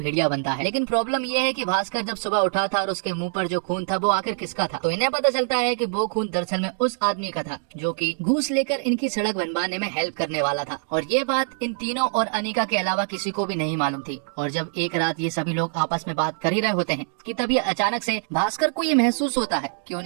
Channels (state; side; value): silent; left; digital silence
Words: बनता है। लेकिन प्रॉब्लम ये है कि भास्कर जब सुबह उठा था और उसके मुंह पर जो खून था वो आखिर किसका था। तो इन्हें पता चलता है कि वो खून दरअसल में उस आदमी का था जो कि घूस लेकर इनकी सड़क बनवाने में हेल्प करने वाला था। और ये बात इन तीनों और अनीका के अलावा किसी को भी नहीं मालूम थी। और जब एक रात ये सभी लोग आपस में बात कर ही रहे होते हैं कि तभी अचानक से भास्कर को ये महसूस होता है कि